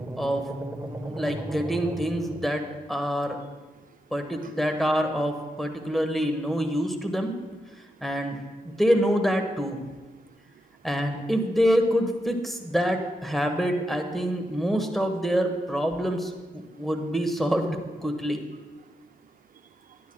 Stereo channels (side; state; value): both; normal; correlation 0.86